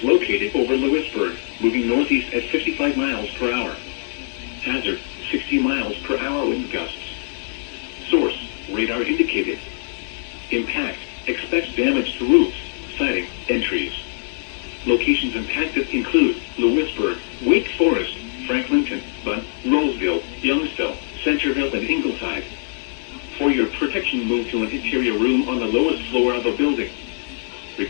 located over Lewisburg, moving northeast at 55 miles per hour. Hazard, 60 miles per hour wind gusts. Source, radar indicated. Impact, expect damage to roofs, siding, and trees. Locations impacted include Lewisburg, Wake Forest, Franklinton, Bunn, Roseville, Youngsville, Centerville, and Ingleside. For your protection, move to an interior room on the lowest floor of a building.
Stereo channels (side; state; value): right; silent; digital silence